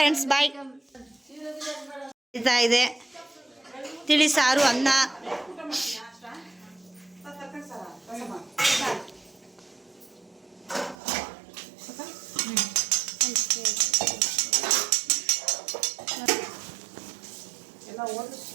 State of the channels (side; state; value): left; drops out; at 11.0 s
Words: ಬಾಯ್. ಇದೆ ತಿಳಿ ಸಾರು, ಅನ್ನ.